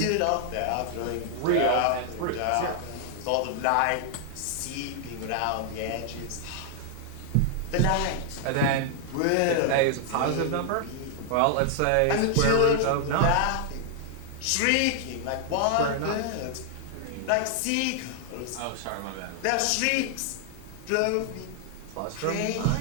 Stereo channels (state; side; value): different; both; correlation 0.00